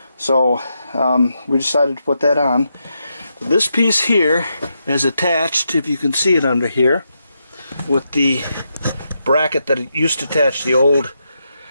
So we decided to put that on. This piece here is attached, if you can see it under here, with the bracket that it used to attach the old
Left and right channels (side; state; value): both; inverted; correlation -0.83